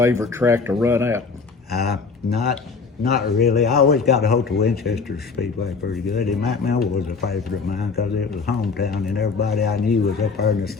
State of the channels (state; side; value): quieter; right; 4.8 dB